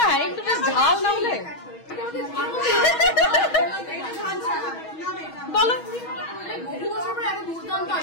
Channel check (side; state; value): right; late; 6.3 ms